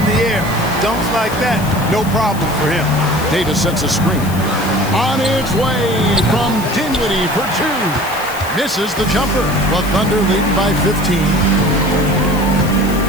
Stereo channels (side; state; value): left; noise; hiss, 14 dB below the sound